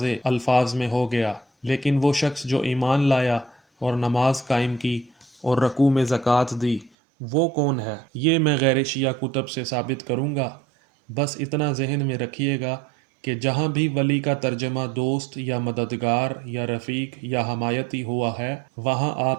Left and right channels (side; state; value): left; drops out; at 6.9 s